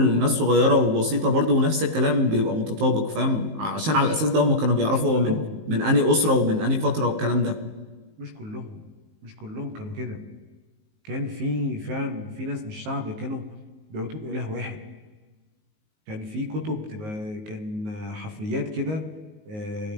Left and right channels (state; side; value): late; left; 19 ms